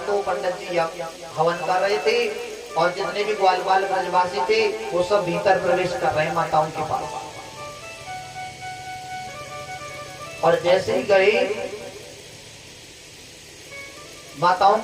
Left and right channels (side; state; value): both; identical; correlation 1.00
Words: तो पंडित जी हवन कर रहे थे और जितने भी ग्वाल ब्रजवासी थे वो सब भीतर प्रवेश कर रहे हैं माताओं के पास। और जैसे ही गए माताओं